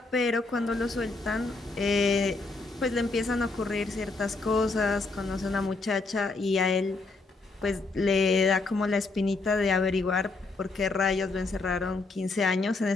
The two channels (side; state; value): right; quieter; 3.6 dB